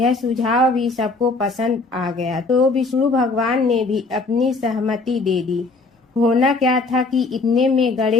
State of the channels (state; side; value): quieter; right; 3.6 dB